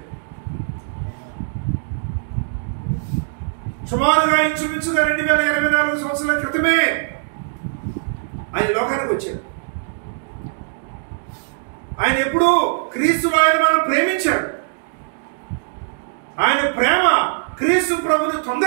సుమారుగా ఇంచుమించుగా 2024 సంవత్సరాల క్రితమే ఆయన లోకానికి వచ్చాడు. ఆయన ఎప్పుడు క్రీస్తులో ఆయన మనం ప్రేమించాడు. ఆయన ప్రేమ క్రీస్తు ప్రభుని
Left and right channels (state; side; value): silent; left; digital silence